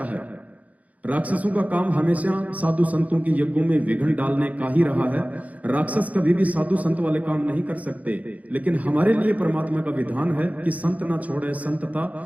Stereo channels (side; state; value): left; late; 0.072 ms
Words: है। राक्षसों का काम हमेशा साधु संतों की यज्ञों में विघ्न डालने का ही रहा है। राक्षस कभी भी साधु संत वाले काम नहीं कर सकते, लेकिन हमारे लिए परमात्मा का विधान है कि संत ना छोड़े संतता,